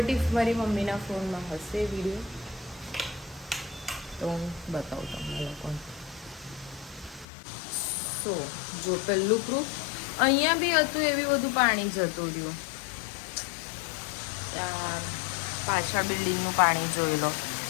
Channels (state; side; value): drops out; right; at 7.2 s